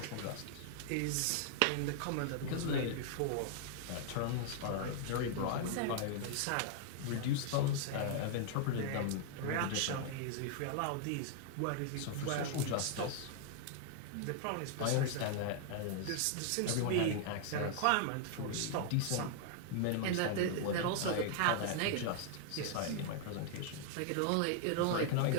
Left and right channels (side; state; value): both; different; correlation 0.00